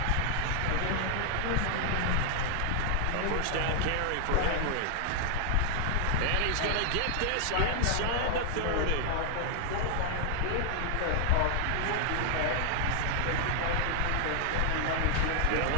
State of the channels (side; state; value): both; different; correlation 0.00